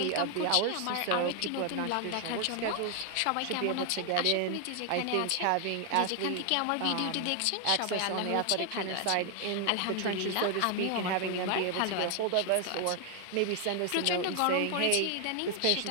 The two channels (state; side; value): different; both; correlation 0.00